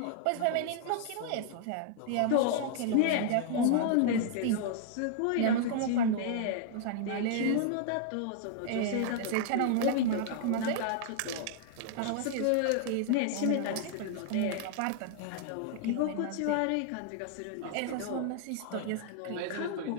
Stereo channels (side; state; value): both; different; correlation -0.01